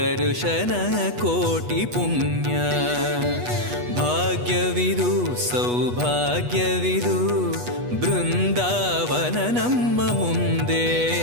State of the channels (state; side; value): late; left; 8.2 ms